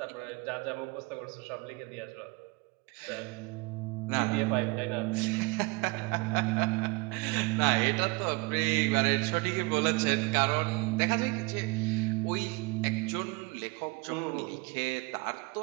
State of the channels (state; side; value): quieter; left; 26.7 dB